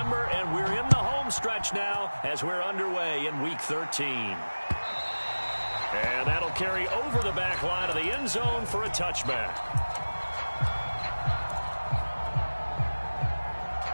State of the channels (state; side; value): inverted; both; correlation -1.00